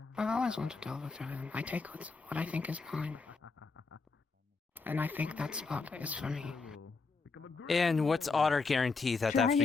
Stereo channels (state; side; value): quieter; right; 4.3 dB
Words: I've always wanted to overthrow him. I take what I think is mine. And I think that spot is for me. And what's our guarantee that after